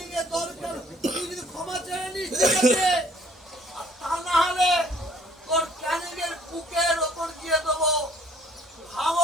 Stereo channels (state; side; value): normal; both; correlation 0.59